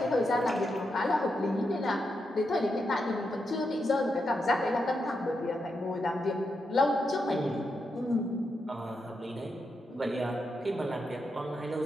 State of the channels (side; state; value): both; normal; correlation 0.84